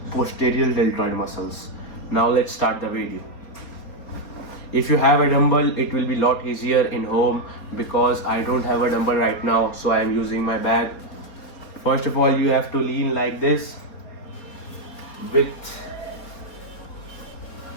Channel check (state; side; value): late; right; 4.2 ms